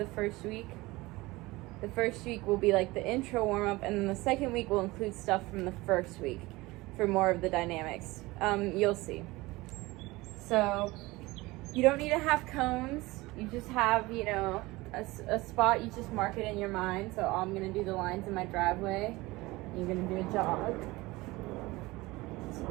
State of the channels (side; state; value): left; quieter; 21.0 dB